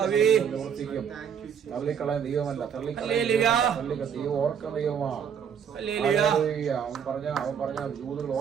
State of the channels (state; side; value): quieter; left; 7.7 dB